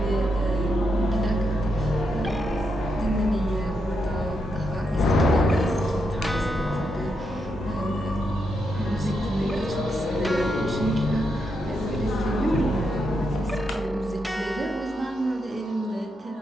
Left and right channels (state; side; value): normal; both; correlation 0.83